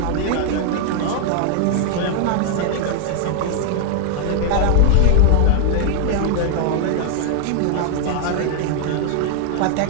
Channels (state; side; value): different; both; correlation 0.00